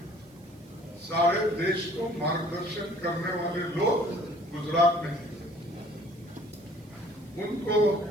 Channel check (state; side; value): noise; right; hiss, 29 dB below the sound